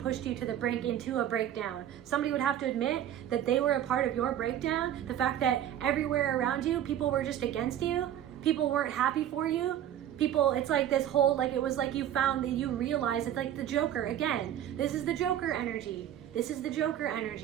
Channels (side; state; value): left; quieter; 11.0 dB